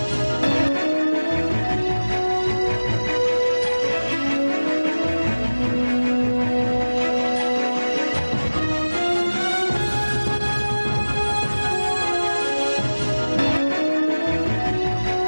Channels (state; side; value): inverted; both; correlation -1.00